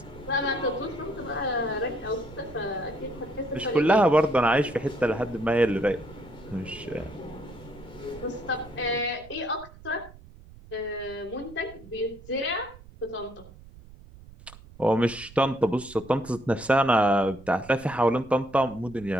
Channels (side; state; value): right; noise; rumble, 20 dB below the sound